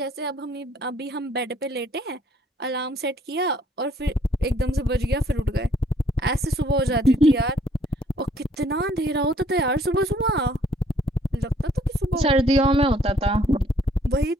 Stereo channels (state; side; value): normal; both; correlation 0.63